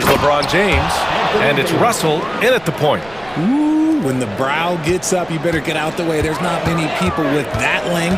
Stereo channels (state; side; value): noise; right; rumble, 24 dB below the sound